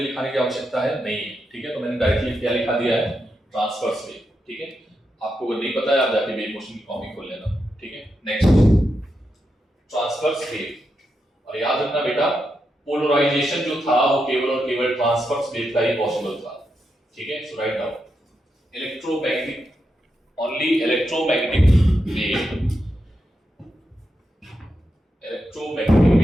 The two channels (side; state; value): both; normal; correlation 0.85